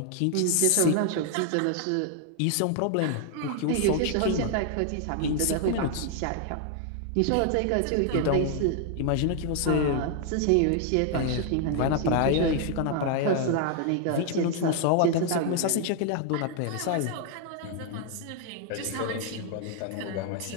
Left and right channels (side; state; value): both; different; correlation 0.00